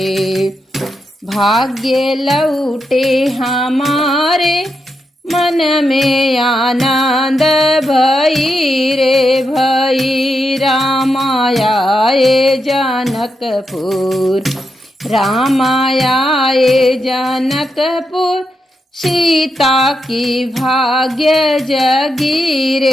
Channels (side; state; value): both; normal; correlation 0.85